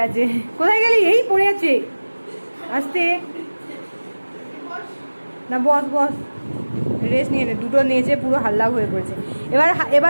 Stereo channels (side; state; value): both; inverted; correlation -1.00